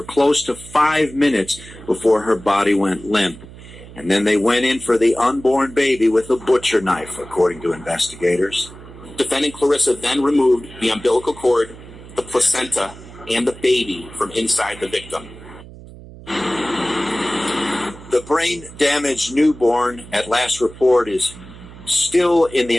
close to 5 minutes before her body went limp. And then they went in for the unborn baby with a butcher knife, according to investigators. Defendant Clarissa then removed the umbilical cord, the placenta, and the baby from inside the victim. The brain-damaged newborn, at last report, is still in the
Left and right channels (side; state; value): right; noise; hum, 17 dB below the sound